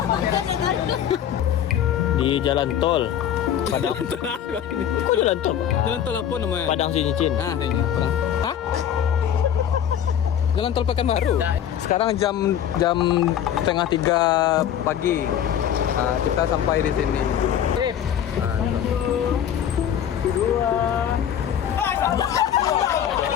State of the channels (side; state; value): right; quieter; 9.7 dB